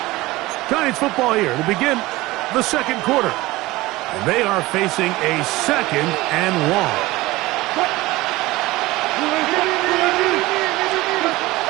Giants football here to begin the second quarter. And they are facing a 2nd and 1.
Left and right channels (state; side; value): quieter; left; 19.4 dB